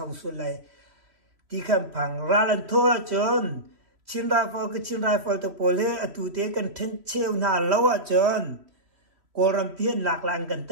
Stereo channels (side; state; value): left; late; 3.1 ms